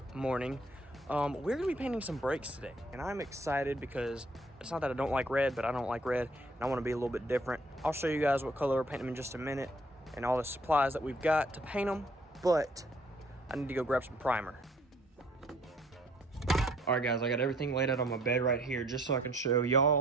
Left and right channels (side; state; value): both; normal; correlation 0.61